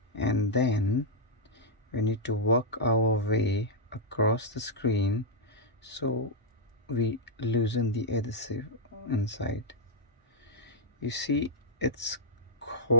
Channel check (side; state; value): both; normal; correlation -0.06